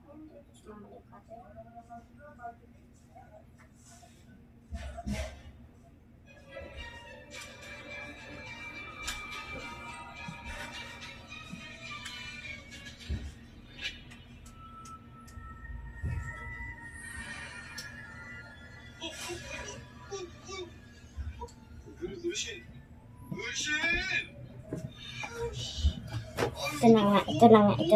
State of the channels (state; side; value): identical; both; correlation 1.00